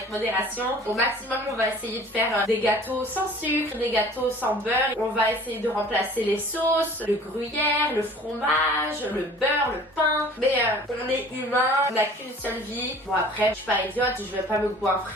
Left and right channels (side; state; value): both; normal; correlation 0.48